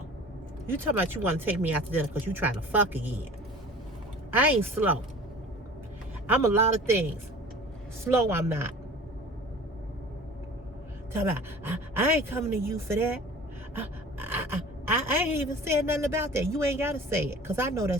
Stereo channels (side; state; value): both; normal; correlation 0.42